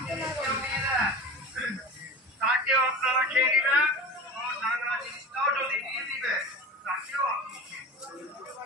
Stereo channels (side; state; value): both; normal; correlation 0.32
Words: কেউ দিয়ে দেন তাকেও আপনারা খেয়ে নেবেন, নানা জিনিসটাও যদি দিয়ে দিবে তাকেও আপনি খেয়ে